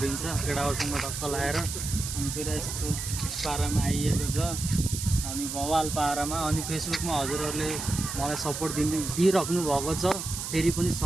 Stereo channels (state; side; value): noise; right; hiss, 5 dB below the sound